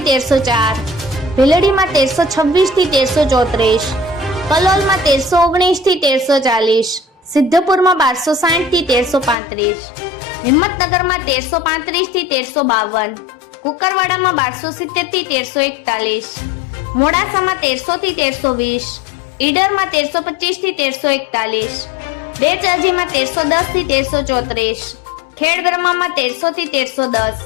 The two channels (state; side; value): drops out; right; at 9.3 s